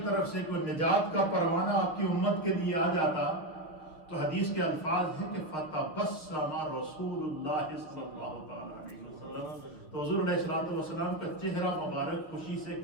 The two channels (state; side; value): late; right; 6.2 ms